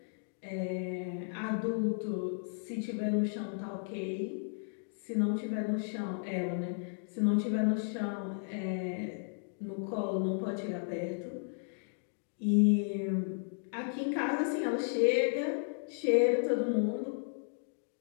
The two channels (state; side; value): silent; right; digital silence